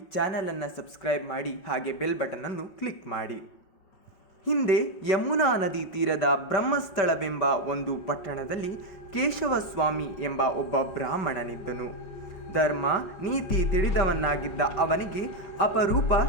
ಚಾನಲನ್ನು ಸಬ್ಸ್ಕ್ರೈಬ್ ಮಾಡಿ, ಹಾಗೆ ಬೆಲ್ ಬಟನನ್ನು ಕ್ಲಿಕ್ ಮಾಡಿ. ಹಿಂದೆ ಯಮುನಾ ನದಿ ತೀರದ ಬ್ರಹ್ಮಸ್ಥಳವೆಂಬ ಒಂದು ಪಟ್ಟಣದಲ್ಲಿ ಕೇಶವಸ್ವಾಮಿ ಎಂಬ ಒಬ್ಬ ಬ್ರಾಹ್ಮಣನಿದ್ದನು. ಧರ್ಮ ನೀತಿ ತಿಳಿದವನಾಗಿದ್ದ ಅವನಿಗೆ ಅಪರೂಪ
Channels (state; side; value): late; right; 5.3 ms